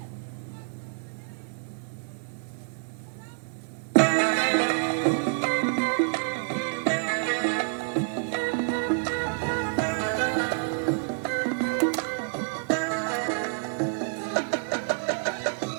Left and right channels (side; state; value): left; silent; 59 dB below the other